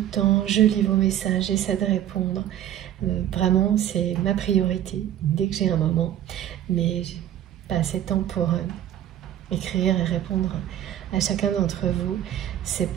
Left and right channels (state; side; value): quieter; left; 11.6 dB